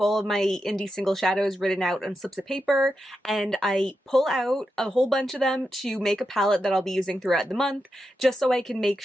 all of my indie single shadows written out on slips of paper, and I pull out a whole bunch of them to make a palette that I'll be using throughout the month, just so I can make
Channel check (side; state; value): both; normal; correlation 0.87